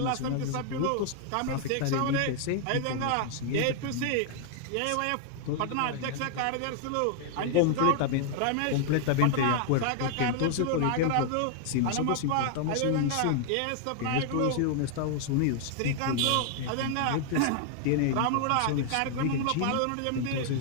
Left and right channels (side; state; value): both; different; correlation 0.00